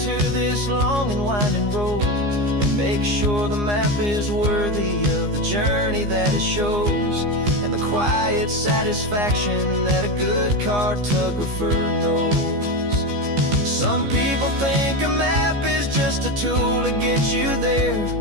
this long and winding road, and make sure the map is worthy of the journey that it shows, and the quiet satisfaction that a good cartographer knows. Some people think a map is just a tool to get you there,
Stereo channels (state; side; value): late; left; 15 ms